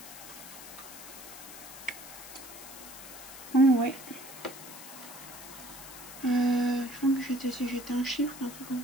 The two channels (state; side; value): noise; left; hiss, 13 dB below the sound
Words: Oh ouais. Je crois que si j'étais un chiffre, un truc comme